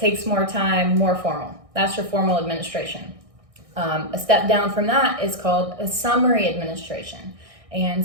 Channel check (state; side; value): late; left; 1.6 ms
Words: more time, more formal. That's your formal administration. A step down from that is called a summary administration. And